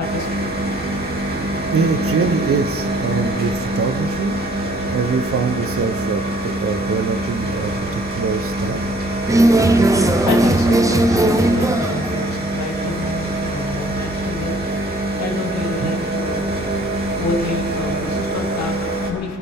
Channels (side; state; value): both; normal; correlation 0.58